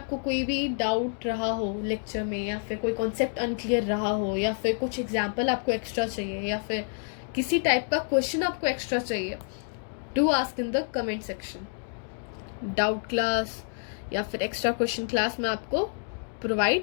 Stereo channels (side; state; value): right; silent; 55 dB below the other